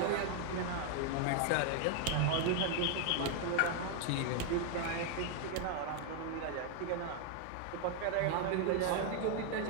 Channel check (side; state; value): both; different; correlation 0.00